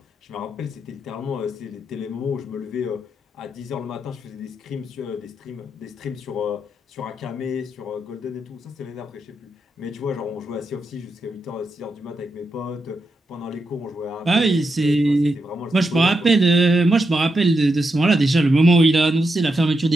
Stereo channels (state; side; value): normal; both; correlation 0.85